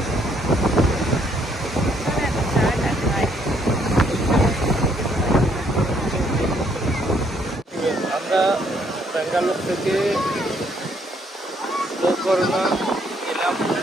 আমরা ব্যাঙ্গালোর থেকে গোকর্ণা গেলাম,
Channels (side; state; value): both; normal; correlation 0.68